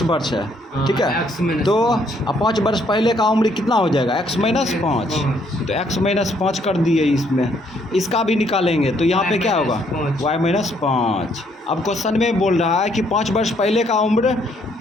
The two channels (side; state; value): both; normal; correlation 0.69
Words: वर्ष है, ठीक है। तो अब 5 वर्ष पहले का उम्र कितना हो जाएगा? x minus 5। तो x माइनस 5 कर दिए इसमें, इसका भी निकालेंगे। तो यहाँ पे क्या होगा? y minus 5। अब क्वेश्चन में बोल रहा है कि 5 वर्ष पहले का उम्र